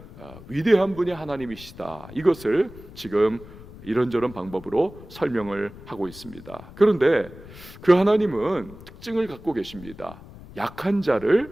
위대한 분이 하나님이시다. 이것을 지금 이런저런 방법으로 설명을 하고 있습니다. 그런데 그 하나님은 특징을 갖고 계십니다. 약한 자를,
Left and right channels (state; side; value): noise; left; rumble, 18 dB below the sound